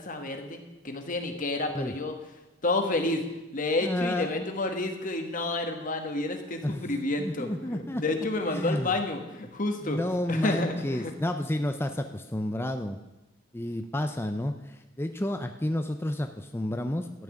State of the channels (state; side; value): normal; both; correlation 0.55